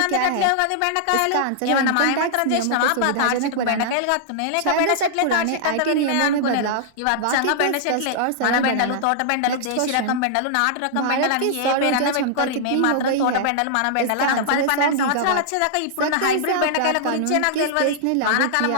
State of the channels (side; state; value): both; different; correlation -0.01